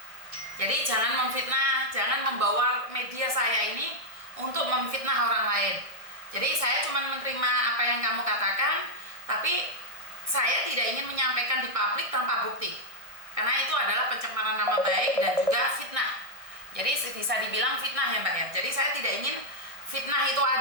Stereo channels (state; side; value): late; left; 1.6 ms